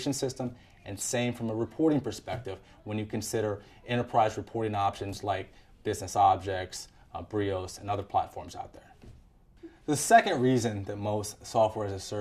system, and same from a reporting perspective when you consider enterprise reporting options like Business Objects, Brios, and other platforms out there. The second reason that most software as a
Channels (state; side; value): identical; both; correlation 1.00